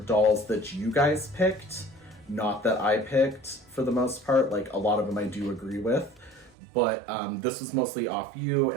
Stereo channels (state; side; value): drops out; left; at 6.6 s